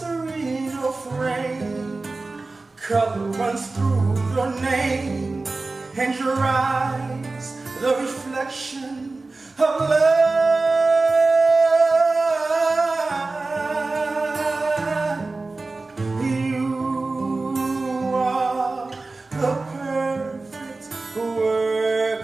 in your frame. Color runs through your name and your eyes, the reflection of love. You are the perfect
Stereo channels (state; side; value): quieter; left; 3.5 dB